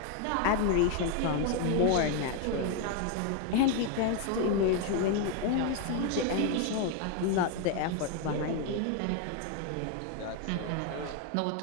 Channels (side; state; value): both; different; correlation 0.01